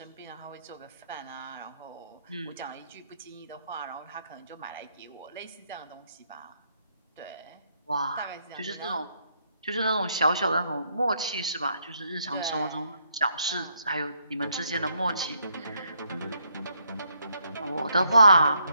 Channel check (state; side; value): inverted; both; correlation -0.73